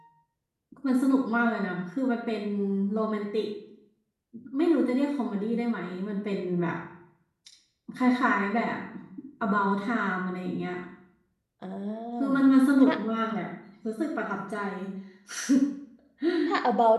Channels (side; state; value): both; identical; correlation 1.00